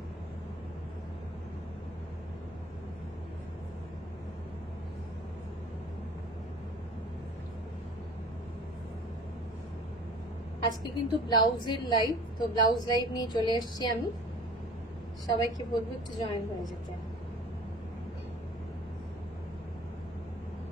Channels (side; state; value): both; normal; correlation 0.45